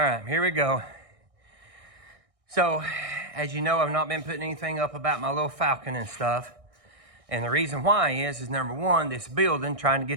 right, here we go. So, as you know, I've not been putting anything up about my little Falcon and stuff. And the reason why is number one, this building, trying to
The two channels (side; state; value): left; late; 1.6 ms